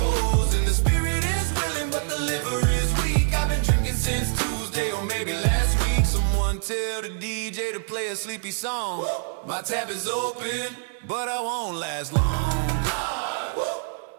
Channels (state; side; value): silent; left; digital silence